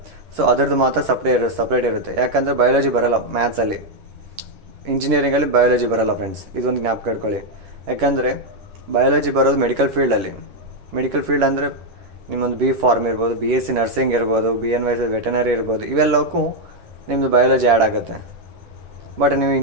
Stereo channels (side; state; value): left; late; 10 ms